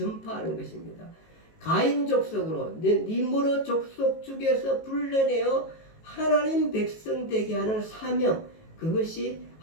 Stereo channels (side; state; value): right; late; 18 ms